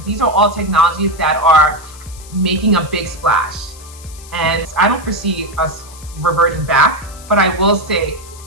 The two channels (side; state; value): left; noise; hiss, 19 dB below the sound